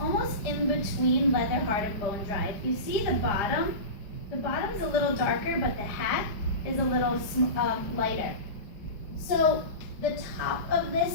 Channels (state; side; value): late; right; 4.9 ms